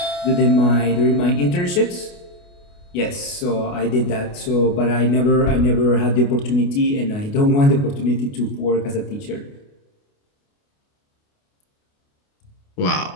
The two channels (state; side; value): late; right; 28 ms